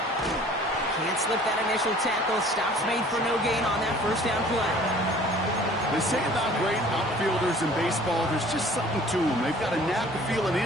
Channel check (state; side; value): normal; both; correlation 0.50